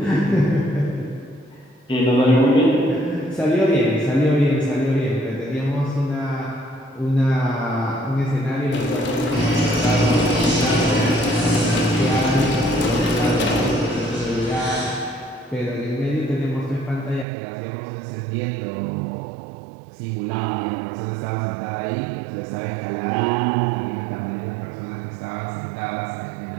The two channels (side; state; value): left; drops out; at 17.2 s